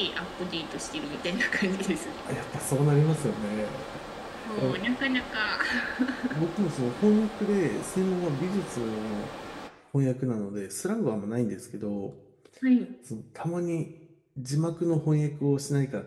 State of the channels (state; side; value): identical; both; correlation 1.00